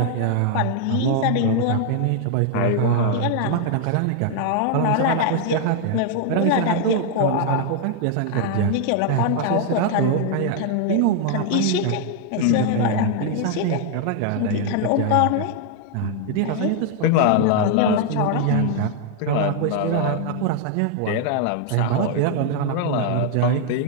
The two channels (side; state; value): both; different; correlation 0.00